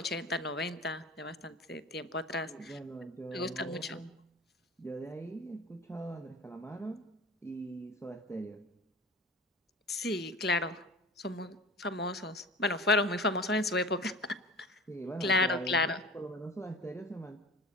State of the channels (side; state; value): both; normal; correlation 0.37